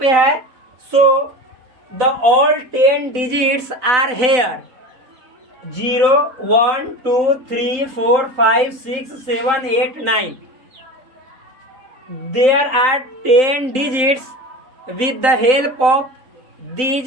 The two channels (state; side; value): late; left; 3.9 ms